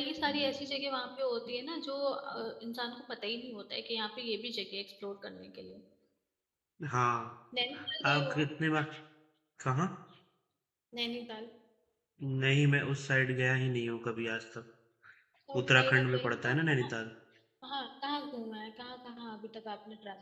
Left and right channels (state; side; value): identical; both; correlation 1.00